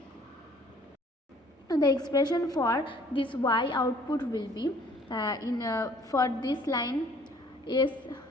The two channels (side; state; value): both; normal; correlation 0.56